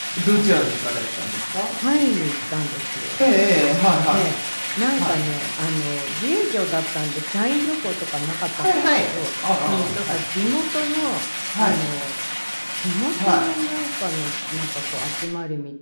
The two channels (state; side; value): inverted; both; correlation -1.00